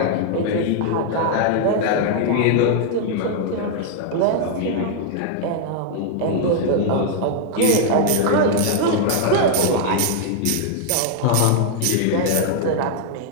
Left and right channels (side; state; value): both; different; correlation 0.00